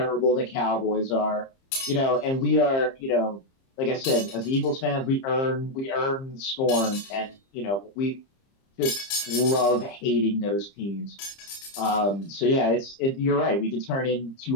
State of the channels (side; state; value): right; late; 30 ms